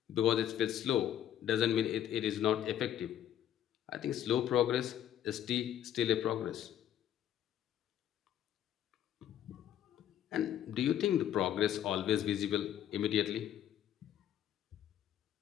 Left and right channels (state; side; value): quieter; right; 11.0 dB